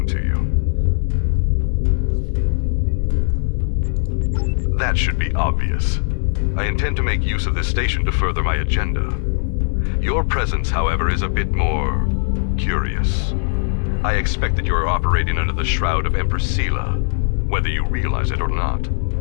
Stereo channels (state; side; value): silent; right; digital silence